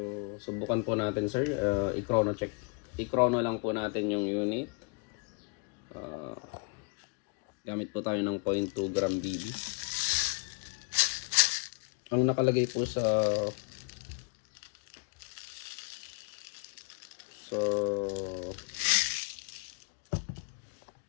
subukan po natin sir, i-chrono check. I-chrono lang po natin yung unit. Gamit po tayo ng 0.2 gram BB. Ang nakalagay po sa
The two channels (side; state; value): right; quieter; 34.5 dB